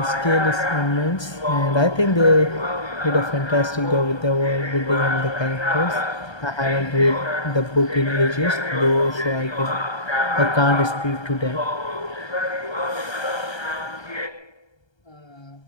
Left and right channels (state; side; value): late; right; 1.3 ms